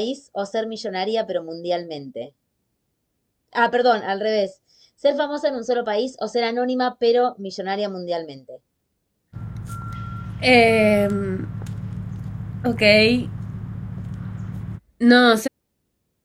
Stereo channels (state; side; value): identical; both; correlation 1.00